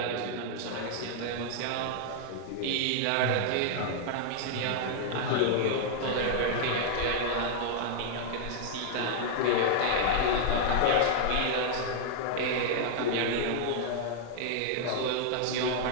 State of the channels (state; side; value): different; both; correlation -0.01